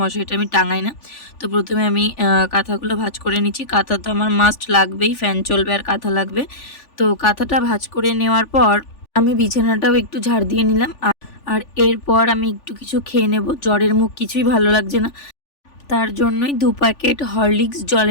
মশারিটা আমি টাঙাই না। তো প্রথমে আমি কাঁথাগুলো ভাঁজ করে নিচ্ছি। কাঁথা তো আমার মাস্ট লাগবেই, ফ্যান চলবে আর কাঁথা লাগবে। তো কাঁথাটা ভাঁজ করে নেওয়ার পর আমি বিছানাটাও একটু ঝাড় দিয়ে নিলাম। আর এরপর আমি একটু কিছু খেয়ে নেব। জ্বরের মুখ কিছুই ভালো লাগছে না, তার জন্যই 2 প্যাকেট হরলিক্স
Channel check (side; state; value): right; late; 3.4 ms